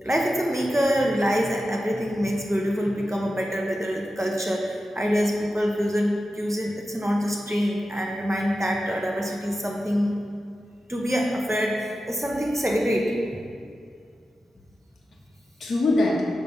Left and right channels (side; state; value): both; normal; correlation 0.92